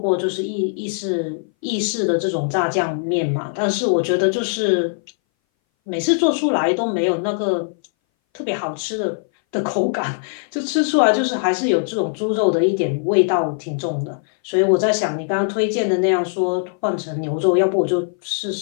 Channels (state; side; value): silent; right; 61 dB below the other